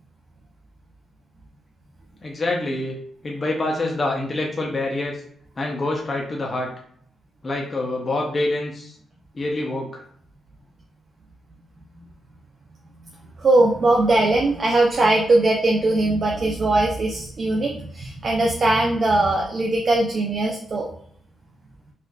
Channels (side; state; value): both; normal; correlation 0.85